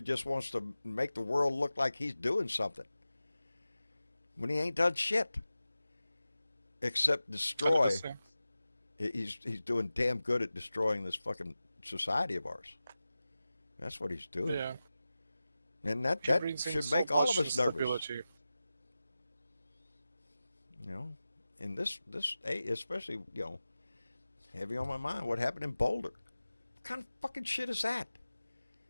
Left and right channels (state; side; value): inverted; both; correlation -0.95